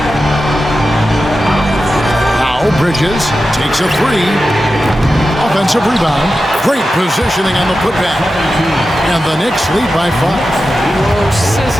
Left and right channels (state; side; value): normal; both; correlation 0.92